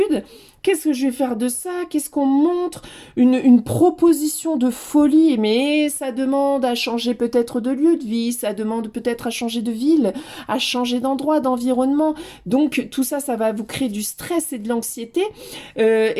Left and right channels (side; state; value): both; identical; correlation 1.00